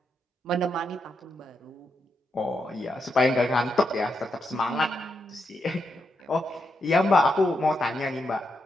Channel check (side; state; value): both; normal; correlation 0.83